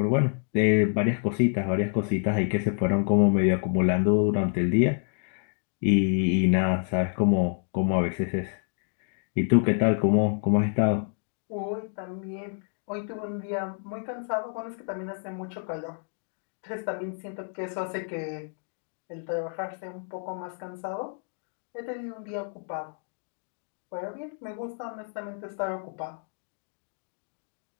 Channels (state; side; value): silent; right; 59 dB below the other